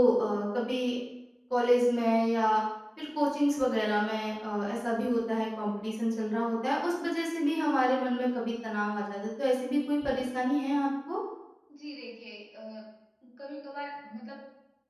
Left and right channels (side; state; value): both; identical; correlation 1.00